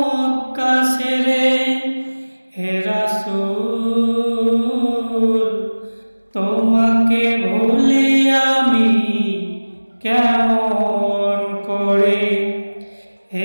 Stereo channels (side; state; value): both; inverted; correlation -1.00